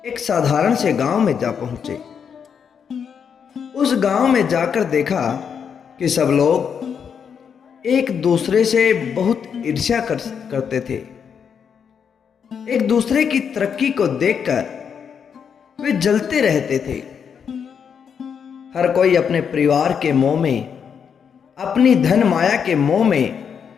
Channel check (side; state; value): right; quieter; 7.1 dB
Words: एक साधारण से गांव में जा पहुंचे। उस गांव में जाकर देखा कि सब लोग एक दूसरे से बहुत ईर्ष्या करते थे। एक दूसरे की तरक्की को देखकर वे जलते रहते थे। हर कोई अपने परिवार के मोह में, अपनी धन माया के मोह में